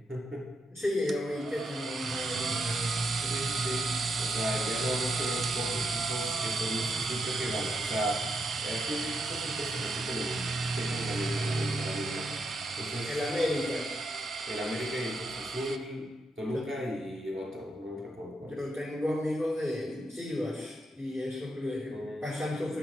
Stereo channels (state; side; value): normal; both; correlation 0.82